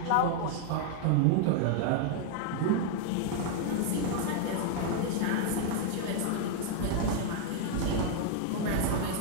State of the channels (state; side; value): different; both; correlation 0.00